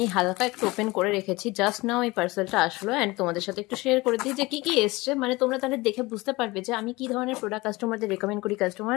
হালকা একটু ওপেন করে রেখেছি। জাস্ট নাও এই পার্সেলটা আসলো অ্যান্ড তোমাদের সাথে একটু শেয়ার করে দিই যে কি কি এসছে। মানে তোমরা তাহলে দেখে বুঝতে পারবে যে আমি কি ধরনের প্রোডাক্ট কাস্টমারদের রেকমেন্ড করি,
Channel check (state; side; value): quieter; right; 22.0 dB